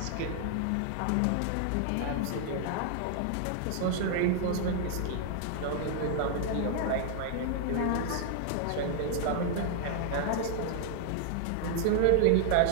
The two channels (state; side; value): different; both; correlation -0.01